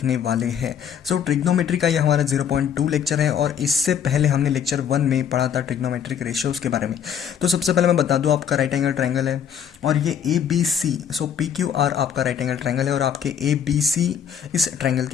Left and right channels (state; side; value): quieter; right; 8.3 dB